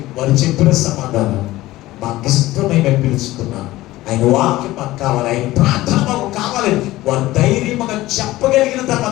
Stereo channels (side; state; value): right; quieter; 17.2 dB